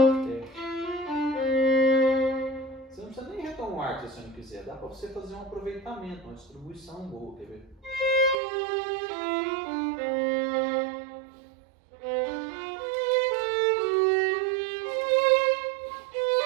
Você não precisa nem retomar o arco se você não quiser. Dá para você fazer um aproveitamento, uma distribuição boa. Quer ver?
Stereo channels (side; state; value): left; drops out; at 8.3 s